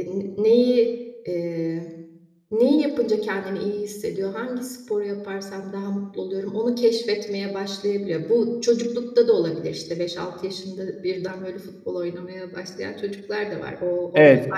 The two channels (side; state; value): both; identical; correlation 1.00